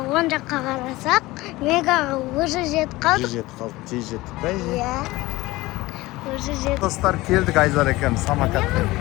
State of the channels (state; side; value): quieter; right; 19.6 dB